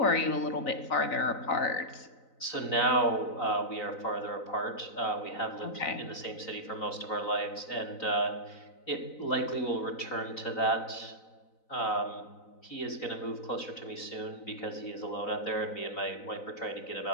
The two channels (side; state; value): right; late; 3.9 ms